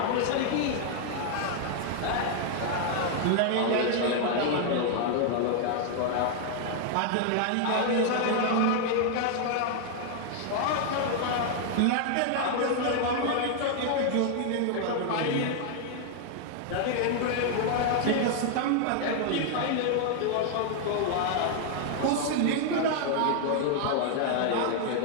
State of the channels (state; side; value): different; both; correlation 0.00